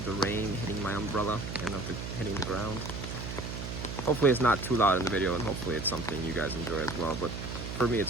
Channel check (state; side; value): noise; right; hum, 7 dB below the sound